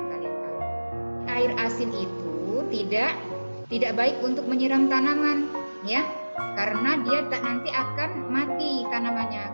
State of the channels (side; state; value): both; inverted; correlation -1.00